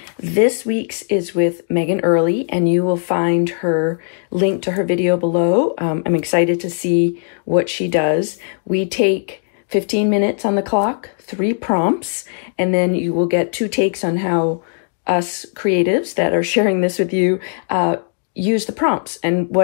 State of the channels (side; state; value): right; silent; 67 dB below the other